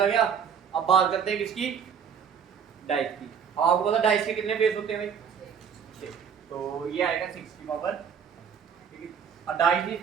गया। अब बात करते हैं किसकी, डाइस की। आपको पता डाइस के कितने फेस होते हैं भाई 6, तो ये आएगा 6 की पावर, ठीक है। डाइस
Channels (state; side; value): quieter; left; 7.2 dB